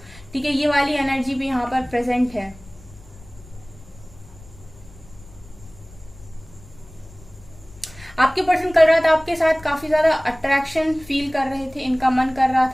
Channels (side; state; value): left; noise; rumble, 21 dB below the sound